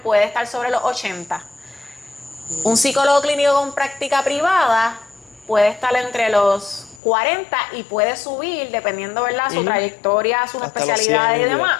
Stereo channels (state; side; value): drops out; right; at 7.0 s